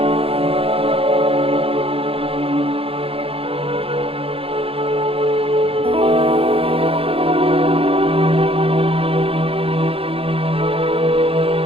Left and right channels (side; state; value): left; late; 0.27 ms